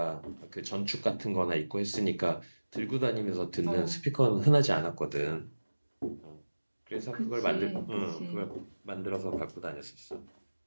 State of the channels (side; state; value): both; inverted; correlation -1.00